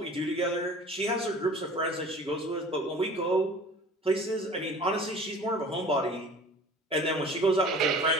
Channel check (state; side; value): normal; both; correlation 0.44